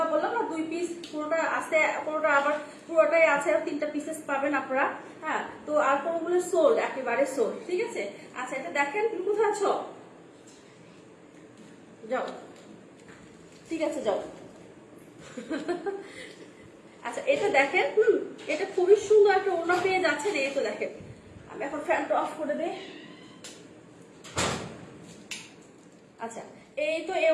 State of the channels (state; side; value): identical; both; correlation 1.00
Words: বললাম না 2 পিস, পুরোটা আছে, পুরোটা আবার পুরোটাই আছে, আর 3টা পিসেস পাবেন আপনারা, হ্যাঁ। তো আর কোনগুলো সোল্ড, একেবারে সোল্ড, ঠিক আছে। আচ্ছা এটা দেখেন, তুমি কোথায় আছো, যাও, ঠিক আছে যাও। আচ্ছা এটা দেখেন, এটা খুবই সুন্দর একটা ওড়না পেয়ে যাচ্ছে। এই তো দেখেন, আমি এখন ফ্যানটা অফ করে দেই। আচ্ছা এই তো এই